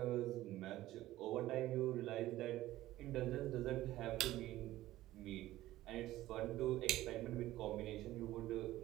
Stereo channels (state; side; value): quieter; left; 15.5 dB